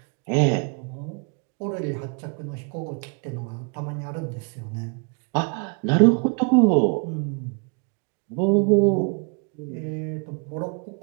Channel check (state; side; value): quieter; left; 35.4 dB